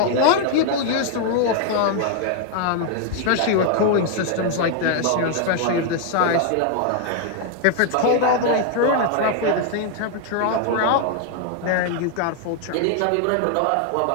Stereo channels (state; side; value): different; both; correlation 0.00